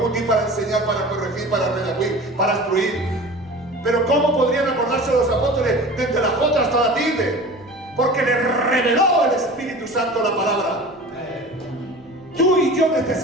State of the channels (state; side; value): noise; left; rumble, 28 dB below the sound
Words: útil para enseñar, para corregir, para redarguir, para instruir. Pero ¿cómo podrían acordarse los apóstoles desde la Jota hasta la tilde? Porque les reveló el Espíritu Santo la palabra. Tú y yo